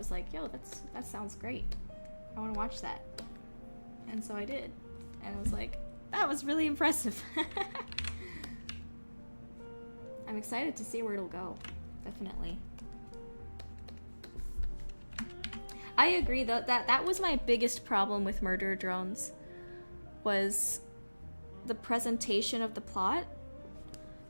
like, yo, that sounds great. I want to watch that. And so I did. And I was like, that was really impressive. I'm excited to see where it'll go. Definitely. I agree though, that was my biggest problem with Murder Drones, was the presentation of the plot.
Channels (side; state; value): both; inverted; correlation -1.00